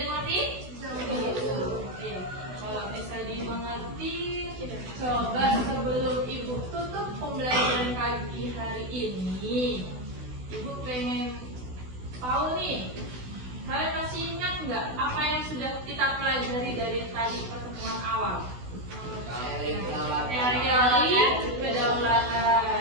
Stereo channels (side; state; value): left; late; 16 ms